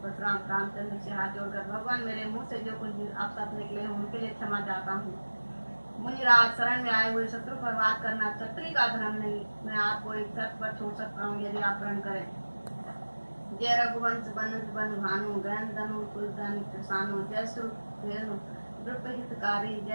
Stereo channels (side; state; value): both; inverted; correlation -1.00